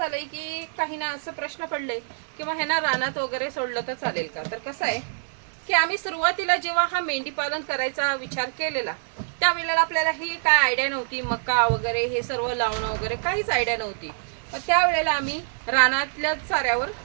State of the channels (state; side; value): silent; left; digital silence